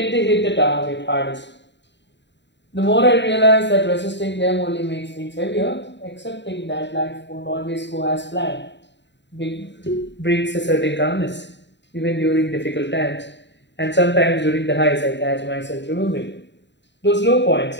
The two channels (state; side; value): late; right; 0.52 ms